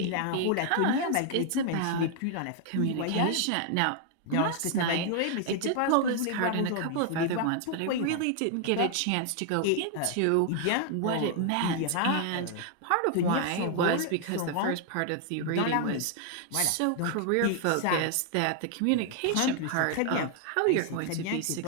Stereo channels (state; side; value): different; both; correlation 0.00